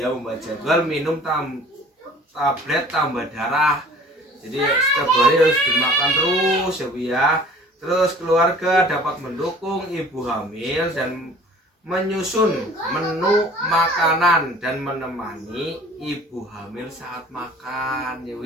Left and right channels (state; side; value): normal; both; correlation 0.48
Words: membuat jadwal minum tablet tambah darah. Jadi setiap hari harus dimakan terus ya Bu ya. Terus keluarga dapat mendukung ibu hamil dan menyusun menu makanan dan menemani ibu hamil saat makan ya Bu